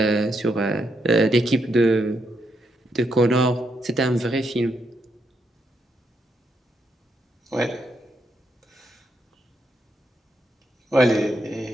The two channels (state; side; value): normal; both; correlation 0.79